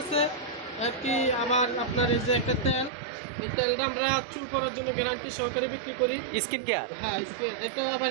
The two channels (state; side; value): drops out; left; at 2.9 s